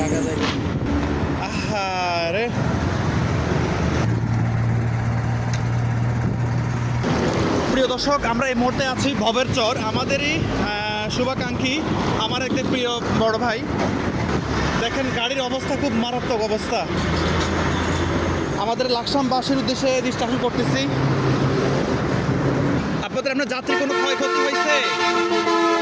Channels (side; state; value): both; identical; correlation 1.00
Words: থেকে। আহারে, প্রিয় দর্শক, আমরা এই মুহূর্তে আছি ভবের চর। আমাদেরই শুভাকাঙ্ক্ষী, আমার একটি প্রিয় বড় ভাই। দেখেন গাড়ির অবস্থা খুব মারাত্মক অবস্থা। আমাদের লাকসামবাসীর উদ্দেশ্যে ডিসকাশন করতেছি। আপনাদের আপনার যাত্রী কোনো ক্ষয়ক্ষতি হয়েছে?